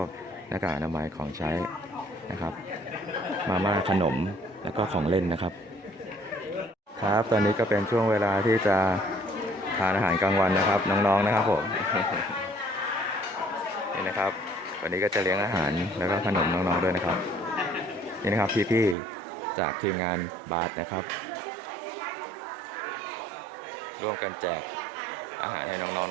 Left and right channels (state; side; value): drops out; left; at 18.9 s